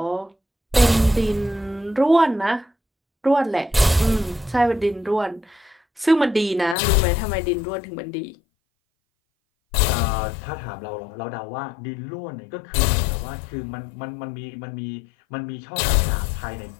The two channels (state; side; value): drops out; right; at 6.8 s